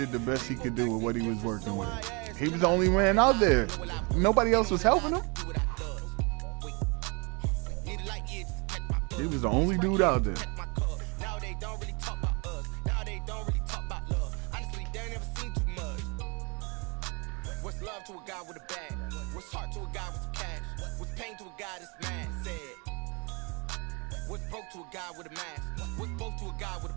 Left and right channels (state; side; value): quieter; left; 30.9 dB